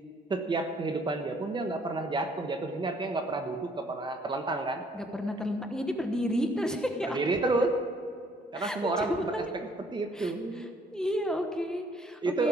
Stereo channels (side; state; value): both; normal; correlation 0.62